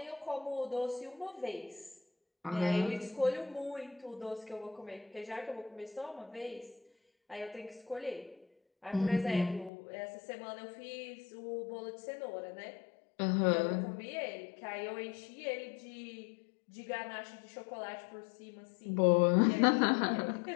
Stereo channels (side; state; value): right; drops out; at 9.7 s